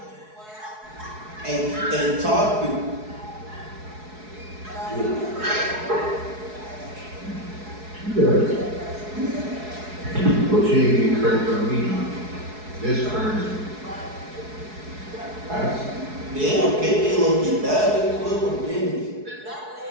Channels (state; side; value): late; left; 4.7 ms